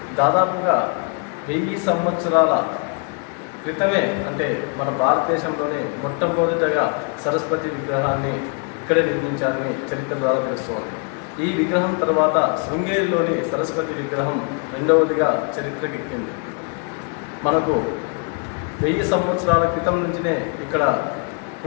దాదాపుగా 1000 సంవత్సరాల క్రితమే, అంటే మన భారతదేశంలోనే మొట్టమొదటగా సరస్వతి విగ్రహాన్ని ఇక్కడే నిర్మించారని చరిత్ర ద్వారా తెలుస్తోంది. ఈ విగ్రహం తర్వాత శృంగేరిలోని సరస్వతి విగ్రహం రెండవదిగా చరిత్రకెక్కింది. మనకు 1000 సంవత్సరాల క్రితం నుంచినే ఇక్కడ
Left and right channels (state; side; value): quieter; right; 37.3 dB